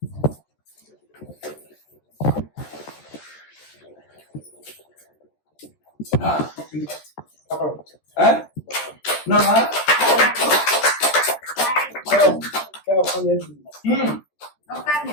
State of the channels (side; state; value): right; late; 13 ms